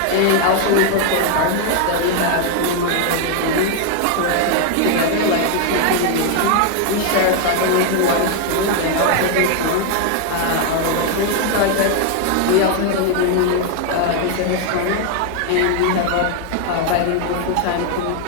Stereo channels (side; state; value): both; different; correlation 0.01